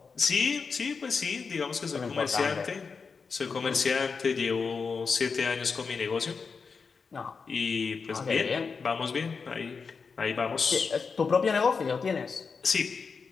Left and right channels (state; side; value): quieter; right; 5.2 dB